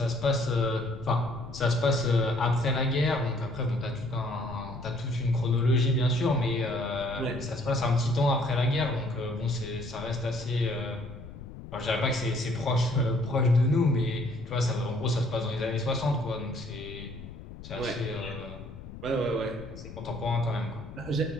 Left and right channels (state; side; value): noise; left; rumble, 14 dB below the sound